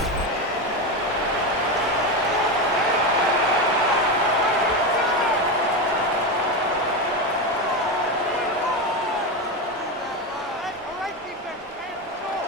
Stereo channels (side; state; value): both; normal; correlation 0.15